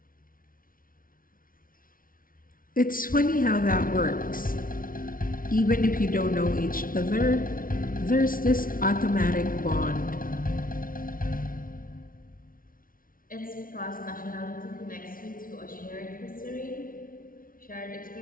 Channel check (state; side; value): late; right; 0.41 ms